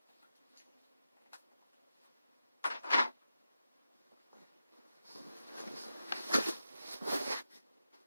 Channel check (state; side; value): inverted; both; correlation -0.89